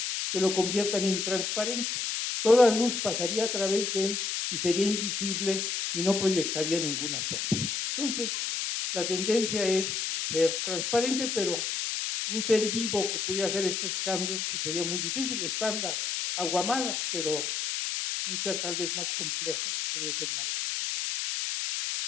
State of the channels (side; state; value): left; noise; hiss, 1 dB below the sound